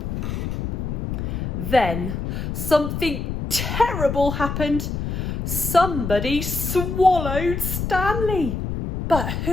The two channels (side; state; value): left; noise; rumble, 3 dB below the sound